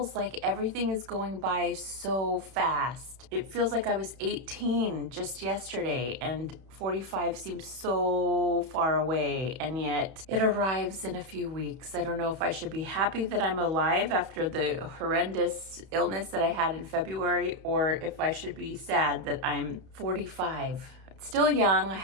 like everything is going by so fast. It feels like I was 18 just yesterday and 45 seems so far away, and yet it arrives in a few weeks. I don't know if I should be happy that I'm alive after the horrendous illness that I had in February, or if I should be sad that I'm 45. It's still young, I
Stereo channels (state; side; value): late; left; 31 ms